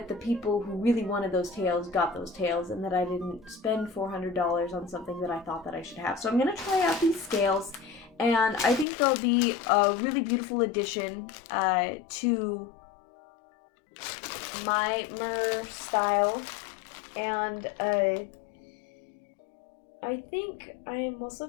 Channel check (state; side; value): drops out; right; at 8.8 s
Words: the people who really wanted those tails got those tails, and that I didn't spend $400 on something that I thought that I should have. So I'm gonna try out these scales, and I think they'll be a really beautiful addition to my mer style. And I think I'm also